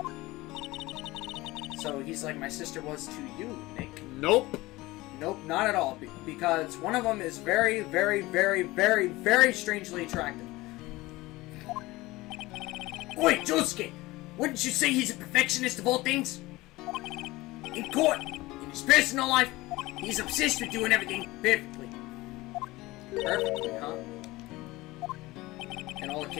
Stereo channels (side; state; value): right; quieter; 20.0 dB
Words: So he's like my sister was to you, Nick. Nope. Nope, not at all. Because one of them is very, very, very, very, very strangely attractive. Wait, Josuke! Wouldn't you say he's a perfectionist of all things? In court, in his personal life, he's obsessed with doing everything perfectly. Perfectly, huh? In all the